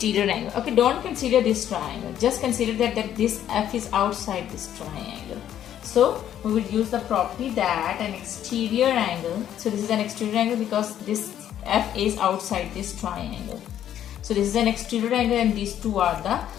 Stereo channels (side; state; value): right; quieter; 10.7 dB